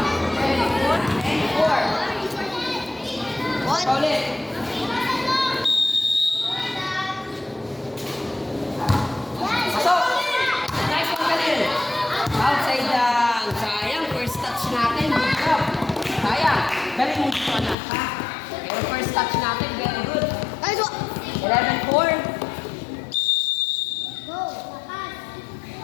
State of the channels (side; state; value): right; drops out; at 17.8 s